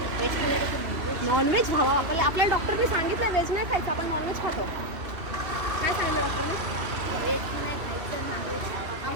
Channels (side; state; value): left; late; 2.7 ms